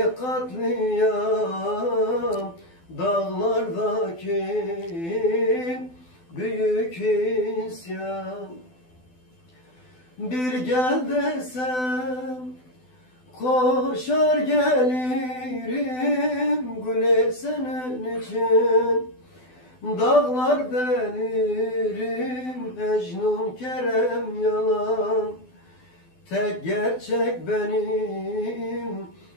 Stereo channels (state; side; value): late; right; 12 ms